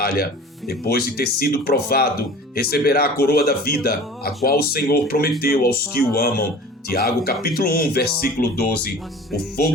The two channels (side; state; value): both; normal; correlation 0.42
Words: Depois de ter sido provado, receberá a coroa da vida, a qual o Senhor prometeu aos que o amam. Tiago capítulo 1, versículo 12. O